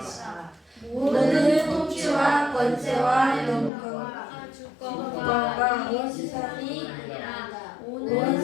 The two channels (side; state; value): right; drops out; at 3.7 s